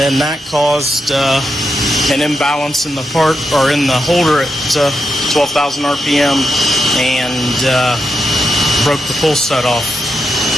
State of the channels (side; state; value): both; normal; correlation 0.85